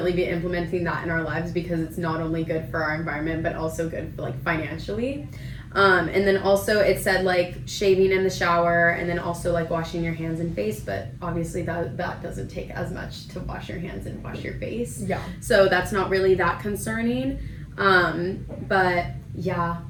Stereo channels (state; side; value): identical; both; correlation 1.00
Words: be implementing that in our lives, because it's not only good for our environment but also good for like financially. And then also it said like shaving in the shower, and then also like washing your hands and face, but obviously that doesn't take as much to wash your hands and wash your face. Yeah. So that's not really that concerning. But yeah.